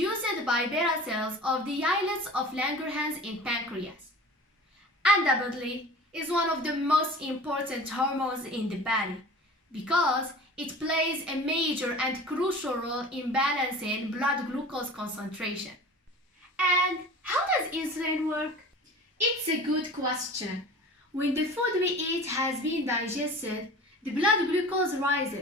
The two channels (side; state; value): both; normal; correlation 0.40